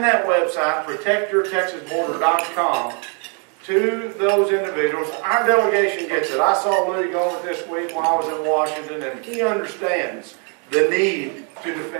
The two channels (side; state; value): left; quieter; 38.1 dB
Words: that website, protectyourtexasborder.com, to those individuals. Our delegation gets it. I saw Louis Gomer this week while I was in Washington, and he understands the need to